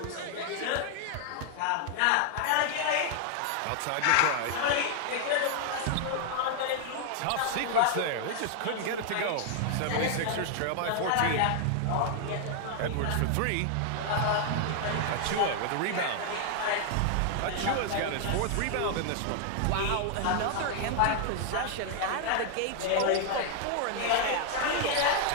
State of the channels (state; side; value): different; both; correlation 0.00